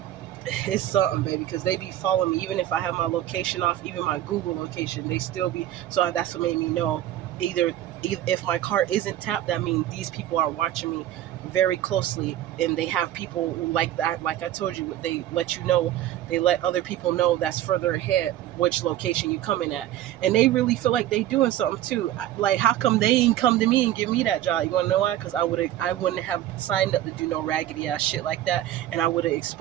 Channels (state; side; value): quieter; left; 12.9 dB